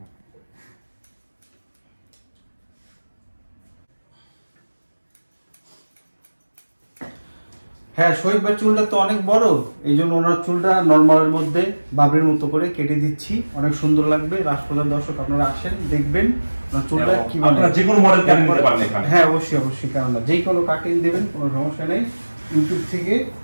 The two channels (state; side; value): inverted; both; correlation -1.00